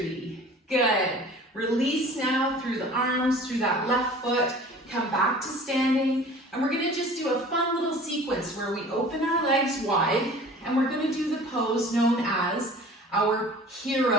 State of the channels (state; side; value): normal; both; correlation 0.44